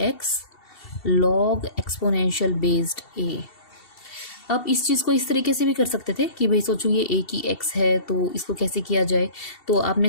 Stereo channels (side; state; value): right; late; 2.7 ms